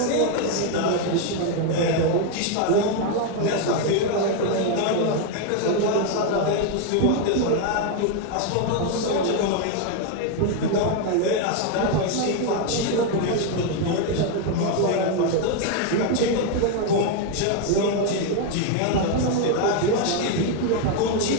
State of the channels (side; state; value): both; different; correlation 0.01